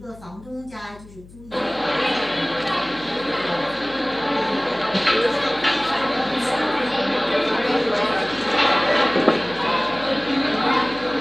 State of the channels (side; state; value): left; noise; hum, 21 dB below the sound